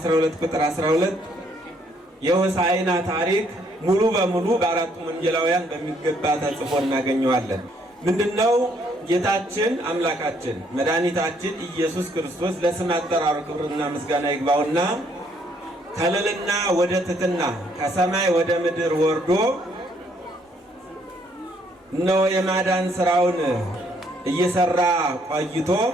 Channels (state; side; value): normal; both; correlation 0.68